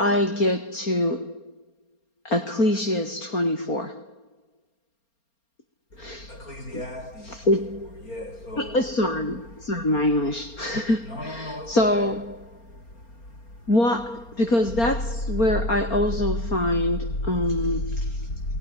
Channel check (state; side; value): late; right; 4.3 ms